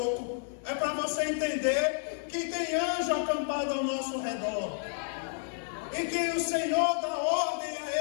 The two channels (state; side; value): silent; right; digital silence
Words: É para você entender que tem anjo acampado ao nosso redor. E que o Senhor dá ordem